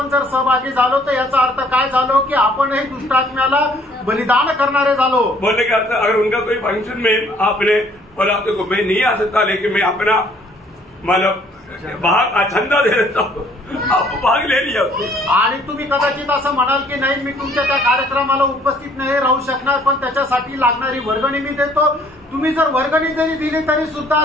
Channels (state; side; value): normal; both; correlation 0.60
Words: जर सहभागी झालो तर याचा अर्थ काय झालो की आपणही दुष्टात्म्याला बलिदान करणारे झालो। बोलने का अर्थ अगर उनका कोई फंक्शन में आपने बोला तो मैं नहीं आ सकता लेकिन मैं अपना मतलब भाग चंदा दे देता हूँ, आप भाग ले लिया। आणि तुम्ही कदाचित असं म्हणाल की नाही मी तुमच्या त्या कार्यक्रमाला उपस्थित नाही राहू शकणार पण त्याच्यासाठी लागणारी वर्गणी मी देतो। तुम्ही जर वर्गणी जरी दिली तरी सुद्धा